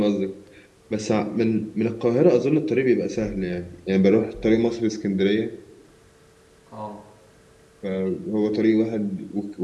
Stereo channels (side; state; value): both; identical; correlation 1.00